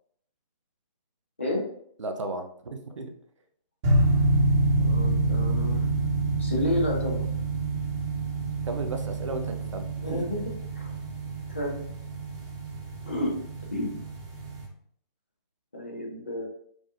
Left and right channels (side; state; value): both; inverted; correlation -0.60